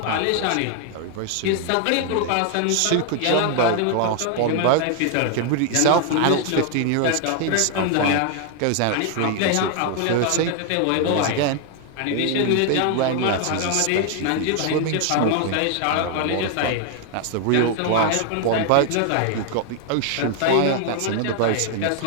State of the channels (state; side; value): different; both; correlation 0.00